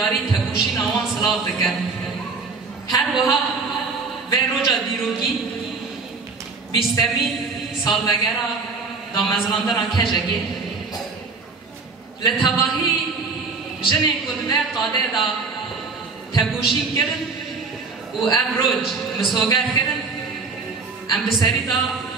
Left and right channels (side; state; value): left; quieter; 4.4 dB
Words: تکوشی نوان صلاح دکن هر وها و روجا دیروگی بیستمی سالوگرا دا مزلاندنا کجگی لتواهی جنه کدوه قاده دا تکوشی کرن و ام روج مسوگر کرن ام بسری دا